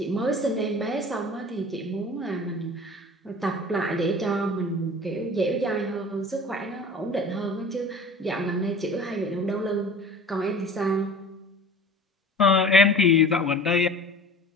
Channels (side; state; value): both; normal; correlation 0.41